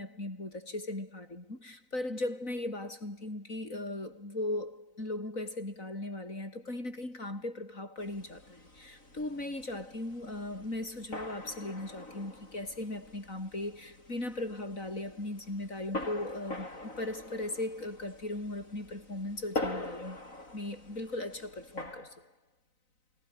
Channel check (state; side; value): late; right; 4.0 ms